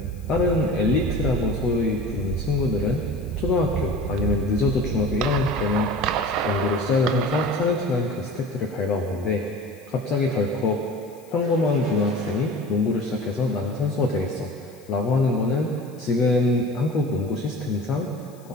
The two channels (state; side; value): noise; left; hiss, 27 dB below the sound